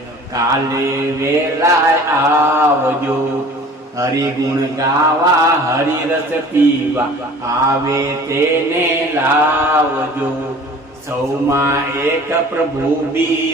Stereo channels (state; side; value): normal; both; correlation 0.46